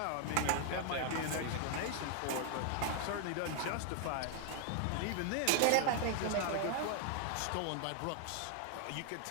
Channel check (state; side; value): different; both; correlation 0.00